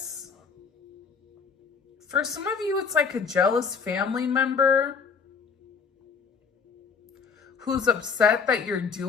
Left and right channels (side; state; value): right; quieter; 5.8 dB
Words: For some of you, it's like a jealous family member who's upset that you're